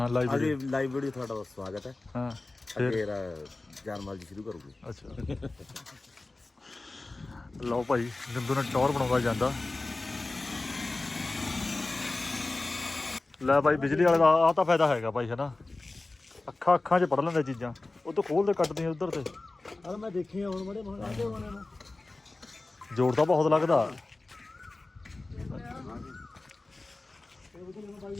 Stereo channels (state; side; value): quieter; right; 3.2 dB